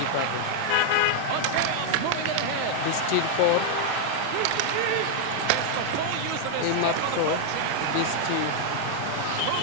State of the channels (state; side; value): different; both; correlation 0.00